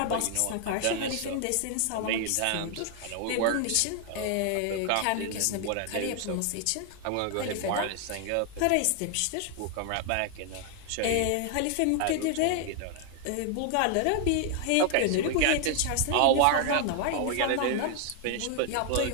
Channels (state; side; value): different; both; correlation 0.00